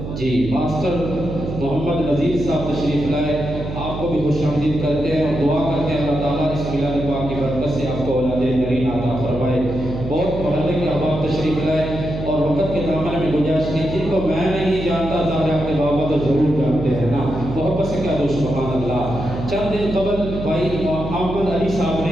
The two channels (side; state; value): right; noise; hum, 8 dB below the sound